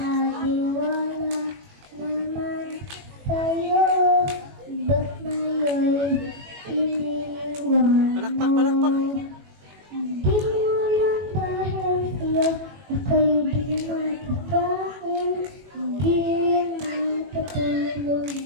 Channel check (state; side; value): late; left; 21 ms